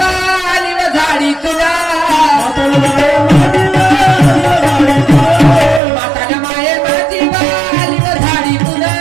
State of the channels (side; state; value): left; drops out; at 5.8 s